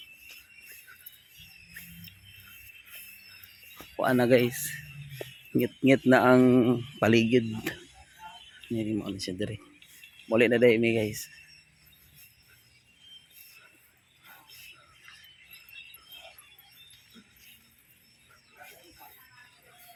kuan na guys. Ngit-ngit na ang paligid. Nini mo ni siya diri. Muli na demi guys.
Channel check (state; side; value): identical; both; correlation 1.00